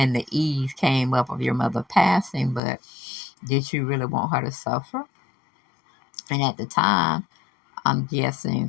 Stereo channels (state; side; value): drops out; right; at 2.6 s